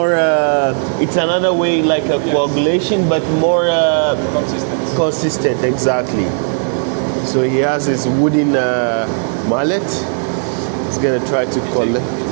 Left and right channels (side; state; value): left; silent; digital silence